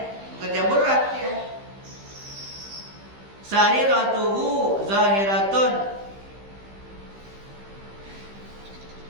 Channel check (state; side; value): late; left; 15 ms